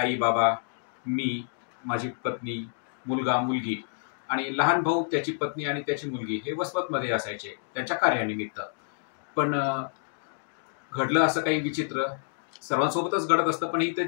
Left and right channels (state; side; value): silent; right; digital silence